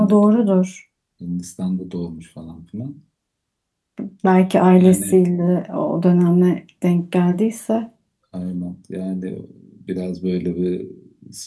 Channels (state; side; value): identical; both; correlation 1.00